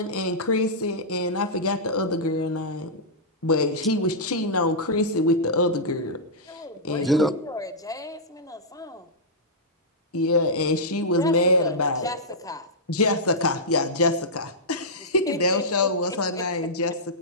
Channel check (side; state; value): both; normal; correlation -0.11